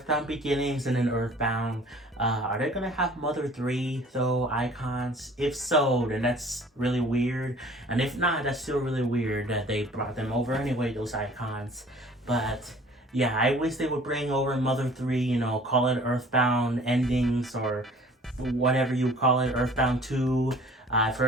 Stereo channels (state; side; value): normal; both; correlation 0.50